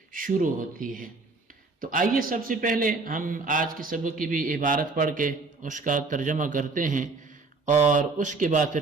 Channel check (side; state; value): left; quieter; 3.8 dB